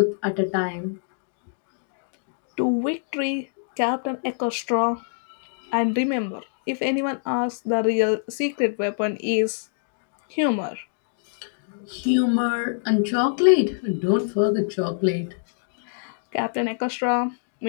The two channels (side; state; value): right; silent; digital silence